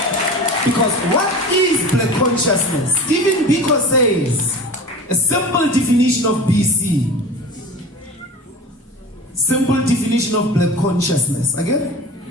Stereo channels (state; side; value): normal; both; correlation 0.35